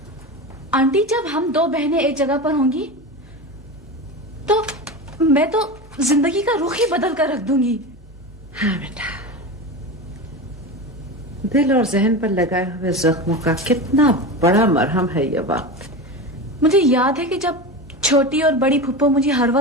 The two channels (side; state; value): both; normal; correlation 0.25